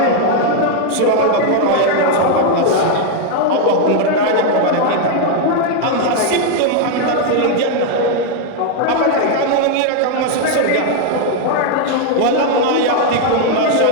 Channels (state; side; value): different; both; correlation 0.00